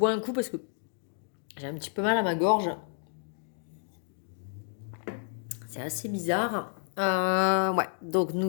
un coup parce que j'ai un petit peu mal à ma gorge. C'est assez bizarre. Ouais, donc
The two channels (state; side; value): silent; right; 58 dB below the other